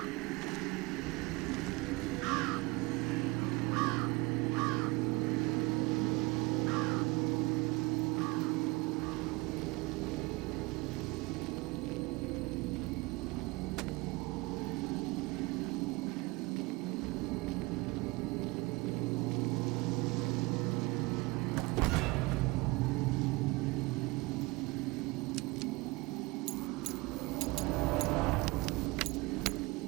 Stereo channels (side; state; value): left; quieter; 23.8 dB